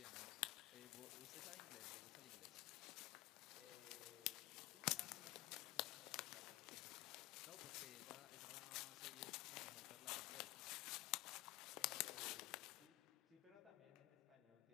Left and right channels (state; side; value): quieter; right; 19.3 dB